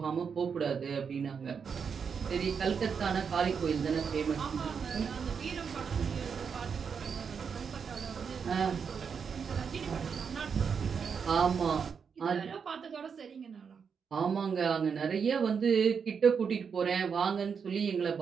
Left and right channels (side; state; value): left; quieter; 6.4 dB